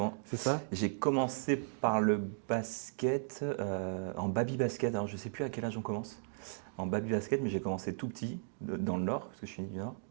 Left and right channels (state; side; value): silent; left; digital silence